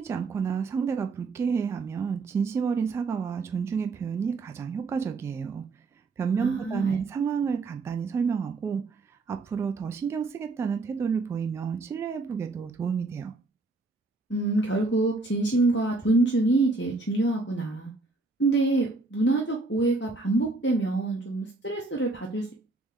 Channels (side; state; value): left; quieter; 3.5 dB